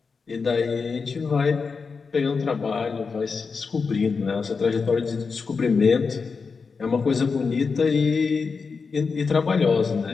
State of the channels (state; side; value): quieter; right; 5.0 dB